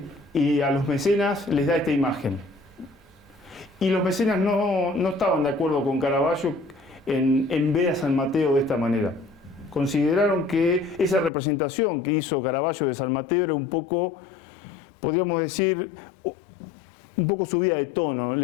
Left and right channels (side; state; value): right; drops out; at 11.3 s